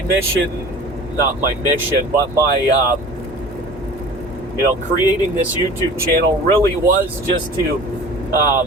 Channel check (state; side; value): normal; both; correlation 0.42